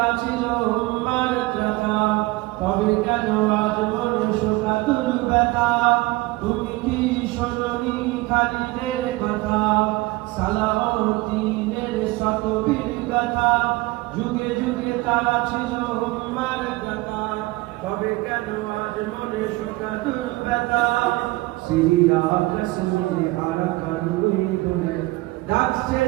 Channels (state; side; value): quieter; left; 21.1 dB